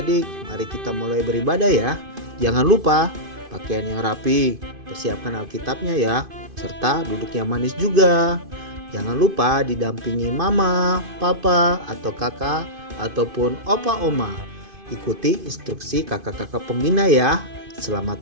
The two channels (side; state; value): left; late; 2.5 ms